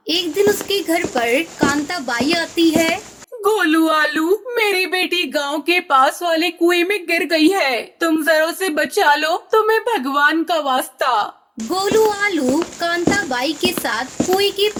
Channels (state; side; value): identical; both; correlation 1.00